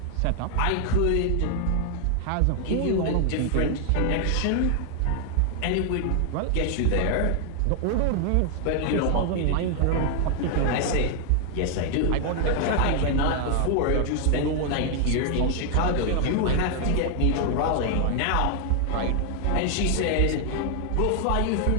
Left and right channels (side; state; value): both; different; correlation 0.00